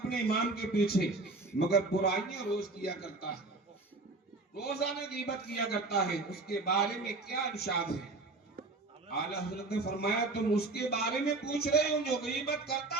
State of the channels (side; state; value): left; quieter; 3.4 dB